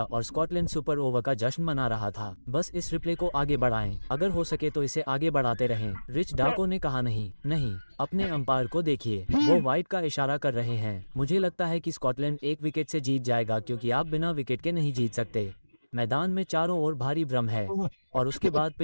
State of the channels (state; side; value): inverted; both; correlation -1.00